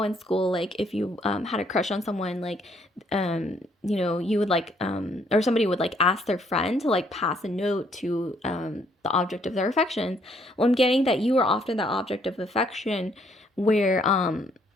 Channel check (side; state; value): both; normal; correlation 0.67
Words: in school, like if you had a crush on someone, like you know, you would like or somebody would like ask their friend to like pass a note to the object of their affection. Well, I'm getting that you are often the object of affection, where